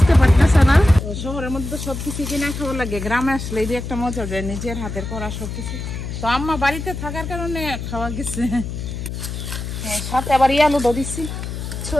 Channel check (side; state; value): left; noise; hum, 6 dB below the sound